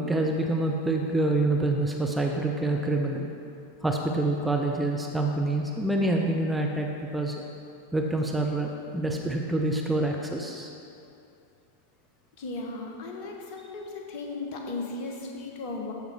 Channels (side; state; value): both; normal; correlation 0.50